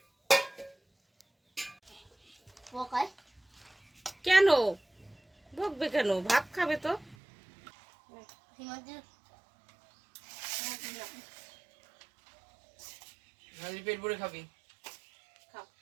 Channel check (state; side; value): drops out; left; at 7.2 s